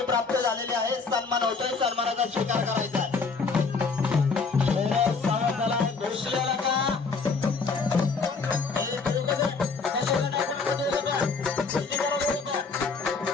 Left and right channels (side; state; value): right; quieter; 4.7 dB